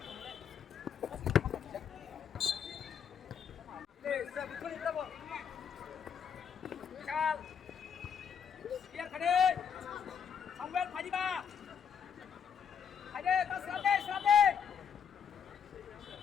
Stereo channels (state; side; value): quieter; right; 7.4 dB